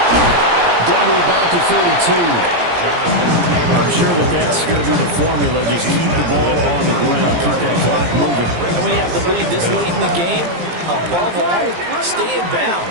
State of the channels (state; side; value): late; left; 17 ms